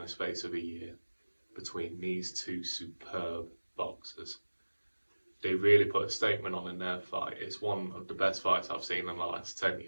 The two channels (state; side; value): inverted; both; correlation -1.00